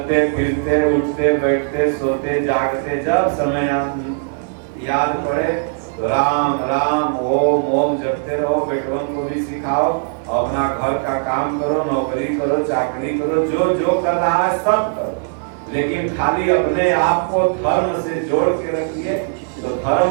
फिरते उठते बैठते सोते जागते जब समय याद पड़े तो राम राम ओम ओम जपते रहो। बेटवन को भी सिखाओ, अपना घर का काम करो, नौकरी करो, चाकरी करो, जो जो कर रहा है सब करो, लेकिन खाली अपने आप को धर्म से जोड़ के रखिए। तो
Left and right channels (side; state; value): left; silent; 62 dB below the other